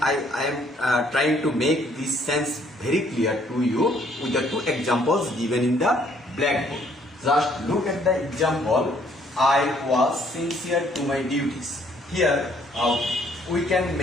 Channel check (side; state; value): both; normal; correlation 0.64